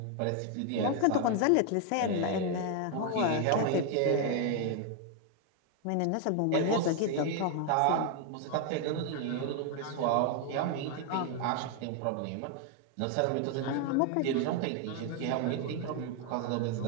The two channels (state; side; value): different; both; correlation 0.00